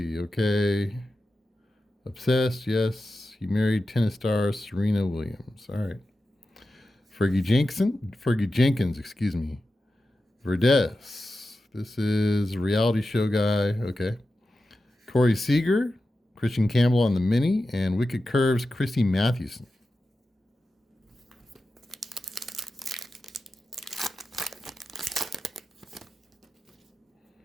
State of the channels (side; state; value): both; normal; correlation 0.92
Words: okay. Obsessed, yes. He married tennis star Serena Williams. All right. Fergie Jenkins, excuse me. Verdes. This is a reality show guy. Okay. Corey Seager, Christian Campbell on the mini, and Wicked Curves, Christy Mathewson.